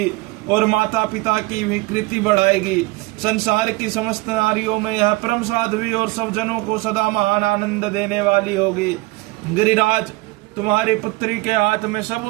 और माता पिता की भी कृति बढ़ाएगी। संसार की समस्त नारियों में यह परम साध्वी और सब जनों को सदा महान आनंद देने वाली होगी। गिरिराज, तुम्हारी पुत्री के हाथ में सब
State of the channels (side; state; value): left; quieter; 22.8 dB